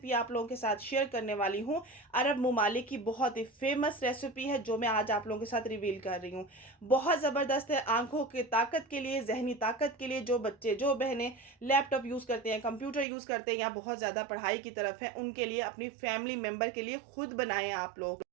आप लोगों के साथ शेयर करने वाली हूँ, अरब ममालिक की बहुत ही फेमस रेसिपी है जो मैं आज आप लोगों के साथ रिवील कर रही हूँ। बहुत ज़बरदस्त है आंखों की ताकत के लिए, जहनी ताकत के लिए। जो बच्चे, जो बहनें लैपटॉप यूज़ करते हैं, कंप्यूटर यूज़ करते हैं या बहुत ज़्यादा पढ़ाई की तरफ है, उनके लिए, अपनी फैमिली मेम्बर के लिए खुद बनाएं आप लोग।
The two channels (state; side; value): drops out; left; at 13.1 s